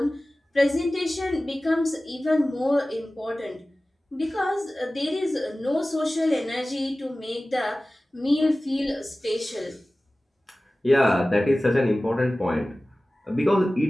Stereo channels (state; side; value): normal; both; correlation 0.97